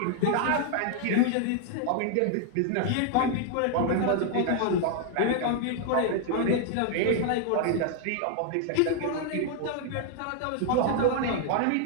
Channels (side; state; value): both; different; correlation 0.00